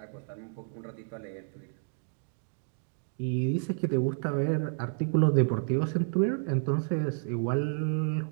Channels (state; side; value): silent; left; 57 dB below the other